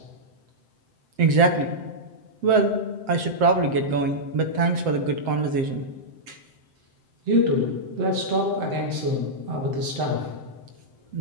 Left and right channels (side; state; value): left; late; 7.7 ms